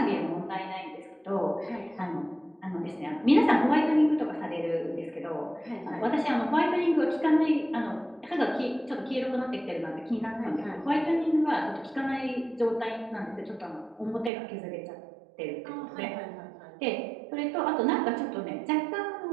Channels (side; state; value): left; drops out; at 14.3 s